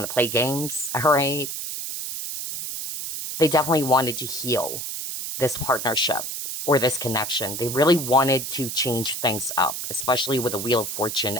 to play games, all right? They definitely wanted to heal this partnership or this connection. They really wanted to change things up, especially with the Wheel of Fortune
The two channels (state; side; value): noise; right; hiss, 5 dB below the sound